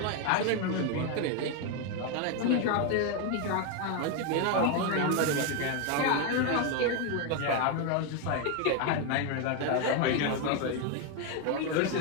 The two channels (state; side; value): different; both; correlation 0.02